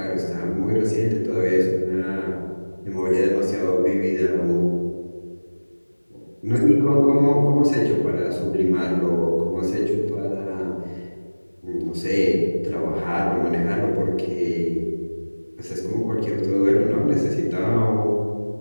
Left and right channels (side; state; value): both; inverted; correlation -1.00